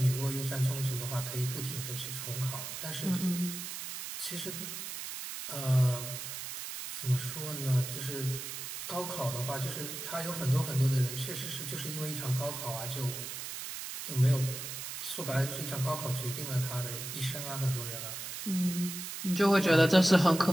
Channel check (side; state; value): right; noise; hiss, 7 dB below the sound